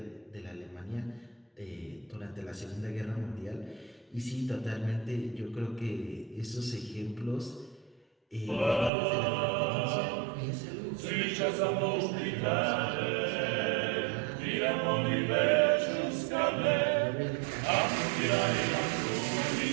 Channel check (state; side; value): drops out; left; at 8.9 s